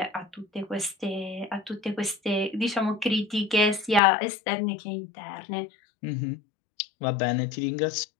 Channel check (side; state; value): right; drops out; at 4.0 s